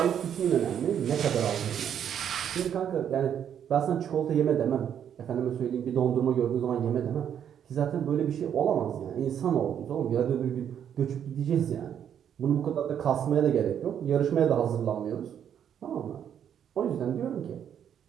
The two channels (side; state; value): left; quieter; 9.0 dB